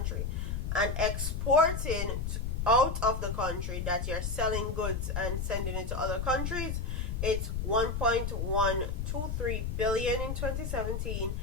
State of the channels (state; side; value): noise; left; rumble, 2 dB below the sound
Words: And exporting out of the country, that you're selling goods and sending it to other countries, it's 1.123 billion in 2017